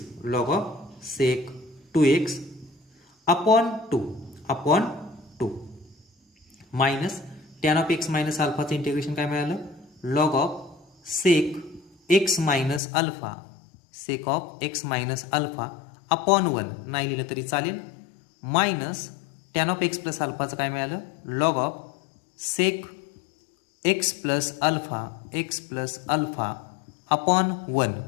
upon 2 minus tan of x minus अल्फाचं इंटिग्रेशन काय मिळालं log of sec x minus alpha upon 1 नाही लिहिलं तरी चालेल minus tan of x plus अल्फाचं काय मिळालं log of sec x plus alpha upon 1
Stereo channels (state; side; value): drops out; right; at 12.8 s